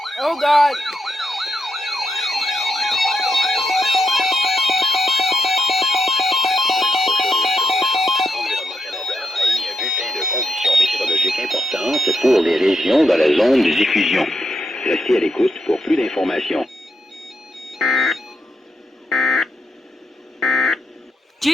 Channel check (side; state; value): both; normal; correlation 0.82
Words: Oh God. Conditions météorologiques importantes pour les régions dans la zone de diffusion. Restez à l'écoute pour plus d'informations.